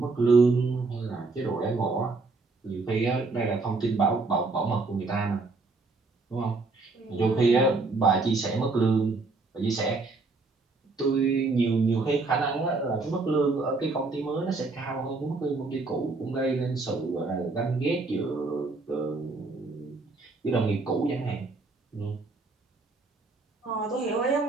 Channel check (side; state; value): left; quieter; 3.7 dB